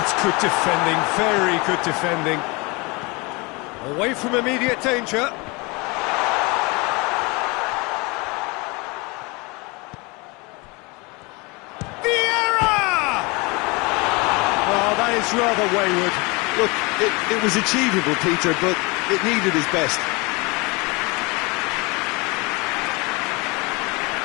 good defending, very good defending. Away from immediate danger. It's rather wayward. Look, it was achievable, Peter, but it needed his best.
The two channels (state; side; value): quieter; right; 27.0 dB